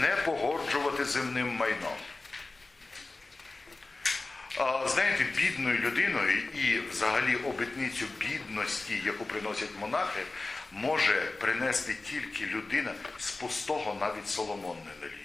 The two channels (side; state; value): right; quieter; 3.3 dB